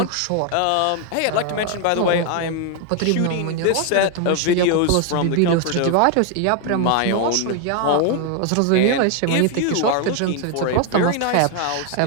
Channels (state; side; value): different; both; correlation 0.00